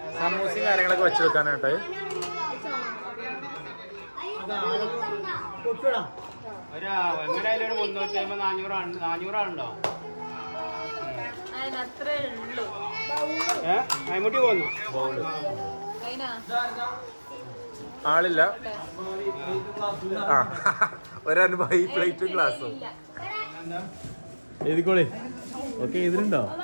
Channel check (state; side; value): inverted; both; correlation -1.00